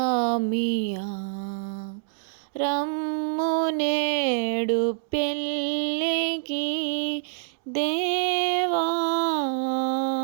రమ్ము నేడు పెళ్ళికి దేవా,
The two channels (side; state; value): left; silent; 61 dB below the other